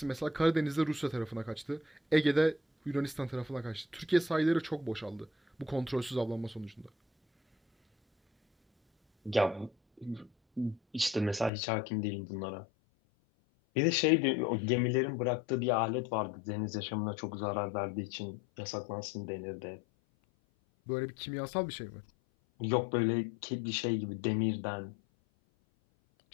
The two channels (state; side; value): drops out; right; at 11.5 s